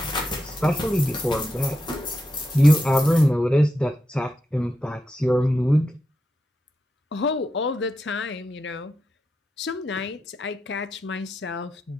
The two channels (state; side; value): normal; both; correlation 0.87